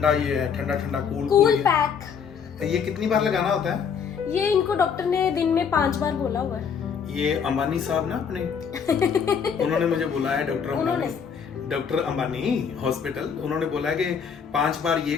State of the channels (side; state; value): right; quieter; 6.8 dB